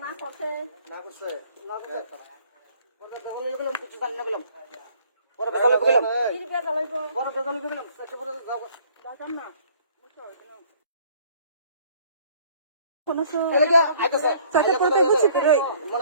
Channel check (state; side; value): inverted; both; correlation -0.57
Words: না করতে গেলাম কিছু জানি না গেলাম বড় বেজালে গেলাম কি বে জ্বালাইব বড় বেজালে গেলাম সেক্টর পরে যাব দাদা না মুছো কোন সো এলাকা আইতাছে Sate porque mucho pero